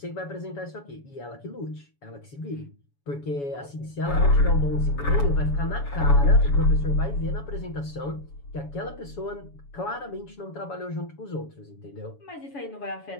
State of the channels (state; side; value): late; right; 7.1 ms